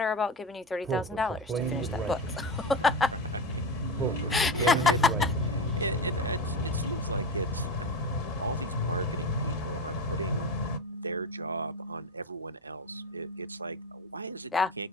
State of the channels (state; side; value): normal; both; correlation 0.21